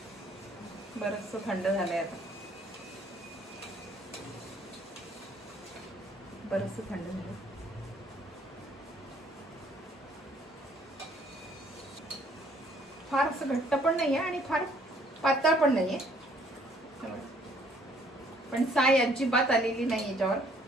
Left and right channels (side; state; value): both; normal; correlation 0.62